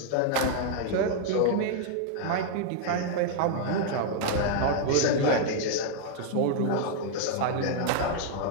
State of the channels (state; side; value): different; both; correlation 0.00